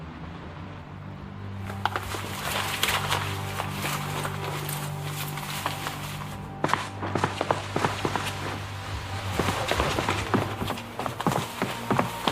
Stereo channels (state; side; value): identical; both; correlation 1.00